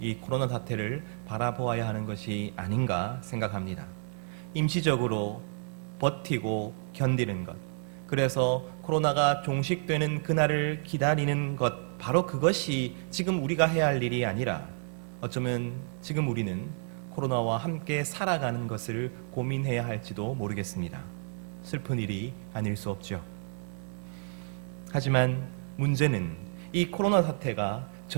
이 코로나 사태를 바라보아야 하는 것이 아닌가 생각합니다. 임시적으로 버티고 견디는 것, 그래서 코로나가 종식되는 그날을 기다리는 것, 바로 그것이 지금 우리가 해야 할 일이 아니라 어쩌면 지금 우리는 코로나와 함께 살아가는 것을 고민해야 할지도 모르겠습니다. 슬픈 일이 아닐 수 없죠. 하지만 문제는 이 코로나 사태가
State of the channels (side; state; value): left; silent; 56 dB below the other